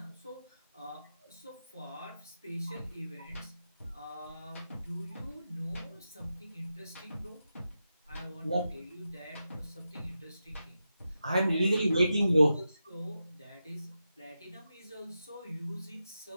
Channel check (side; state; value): both; inverted; correlation -0.89